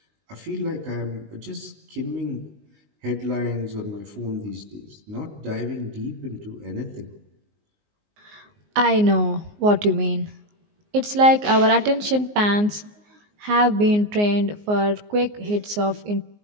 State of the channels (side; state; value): left; late; 19 ms